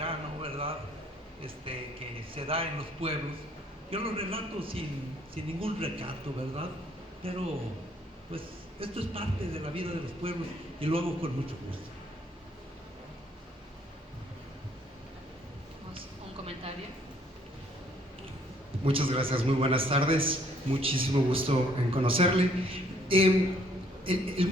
¿verdad? Que se da en los pueblos. Yo lo relato sin ningún recato, ¿verdad? Pero pues esto es parte de la vida de los pueblos y lo hago con mucho gusto. Un comentario. Muchas gracias, muy buenas tardes, muchísimo gusto en conocerle. El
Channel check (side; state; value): both; normal; correlation 0.64